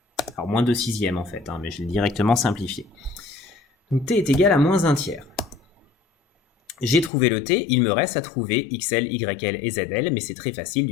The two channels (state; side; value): drops out; right; at 7.1 s